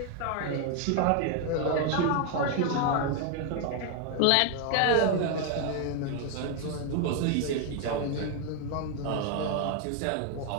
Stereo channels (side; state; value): both; different; correlation 0.01